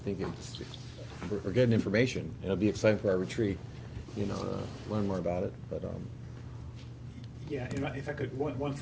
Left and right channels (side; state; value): both; identical; correlation 1.00